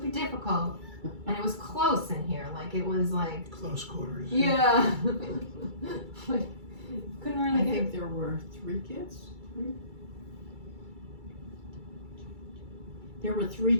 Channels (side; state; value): left; late; 2.3 ms